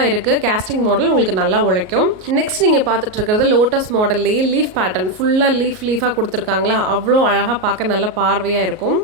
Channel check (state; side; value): late; left; 38 ms